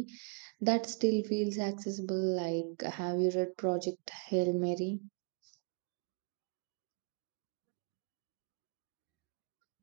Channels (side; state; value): left; quieter; 38.9 dB